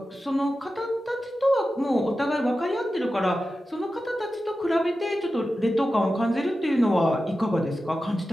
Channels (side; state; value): both; normal; correlation 0.93